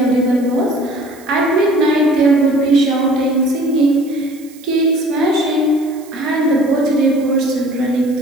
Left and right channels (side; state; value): right; noise; hiss, 24 dB below the sound